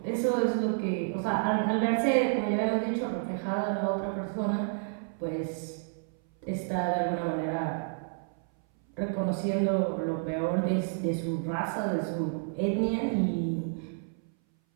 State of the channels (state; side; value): silent; left; 58 dB below the other